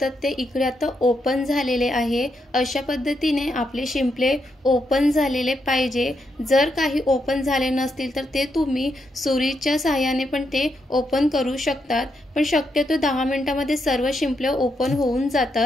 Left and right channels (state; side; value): normal; both; correlation 0.81